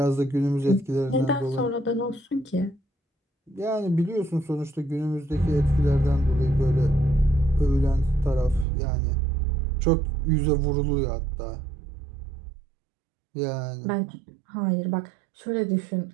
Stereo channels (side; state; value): left; drops out; at 8.7 s